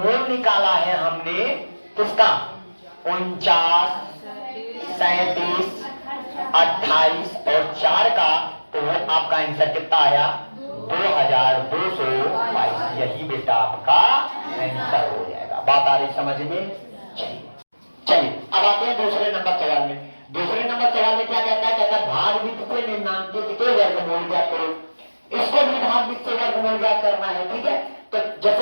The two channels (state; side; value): inverted; both; correlation -1.00